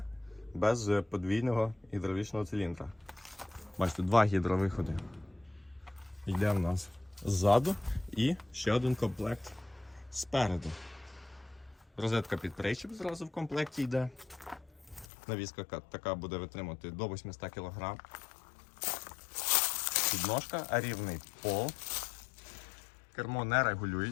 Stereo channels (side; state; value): right; drops out; at 15.1 s